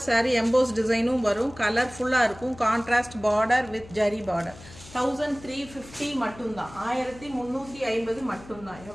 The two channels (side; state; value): left; noise; hum, 19 dB below the sound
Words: saree எம்போஸ் டிசைனும் வரும் கலர்ஃபுல்லா இருக்கும் contrast border with zari border 1350 மட்டும் தான் 1350 மட்டும் தான்